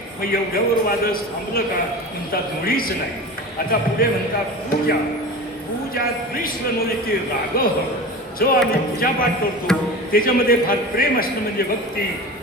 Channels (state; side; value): normal; both; correlation 0.32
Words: मग एवढ्यावर वादळ थांबलं का? म्हणतात मुळीच नाही. आता पुढे म्हणतात पूजा. पूजा द्विष्वनोलिती राग. जो आम्ही पूजापाठ करतो त्याच्यामध्ये फार प्रेम असणं म्हणजे भक्ती.